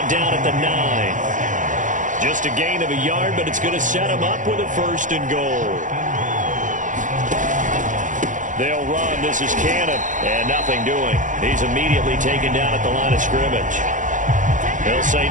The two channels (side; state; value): left; late; 0.37 ms